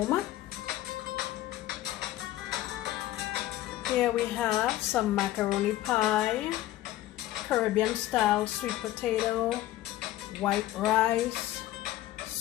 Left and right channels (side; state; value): right; quieter; 14.7 dB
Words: Here we have some macaroni pie, Caribbean style sweet potato, white rice,